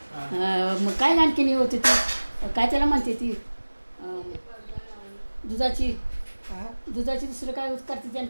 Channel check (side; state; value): both; inverted; correlation -1.00